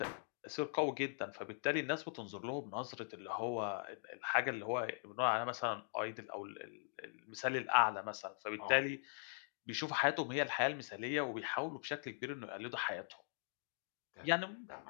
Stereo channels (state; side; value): silent; right; digital silence